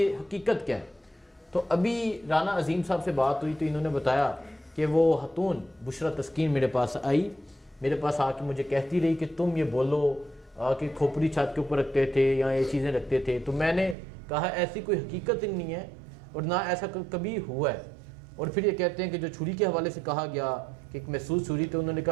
हकीकत क्या है। तो अभी राना अजीम साहब से बात हुई तो इन्होंने बताया कि वो खातून बुशरा तस्कीन मेरे पास आई, मेरे पास आके मुझे कहती रही कि तुम ये बोलो कि खोपड़ी छत के ऊपर रखते थे या ये चीज़ें रखते थे, तो मैंने कहा ऐसी कोई हकीकत ही नहीं है और ना ऐसा कभी हुआ है। और फिर ये कहते हैं कि जो छुरी के हवाले से कहा गया कि एक महसूस छुरी, तो उन्होंने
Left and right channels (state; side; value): drops out; left; at 14.0 s